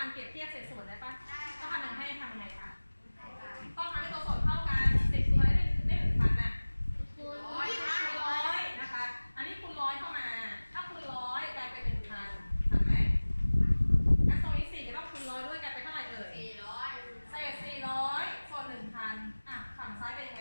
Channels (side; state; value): both; inverted; correlation -1.00